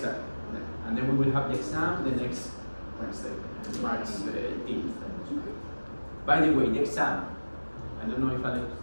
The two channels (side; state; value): both; inverted; correlation -1.00